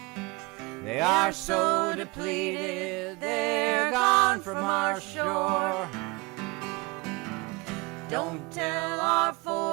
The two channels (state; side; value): quieter; left; 26.3 dB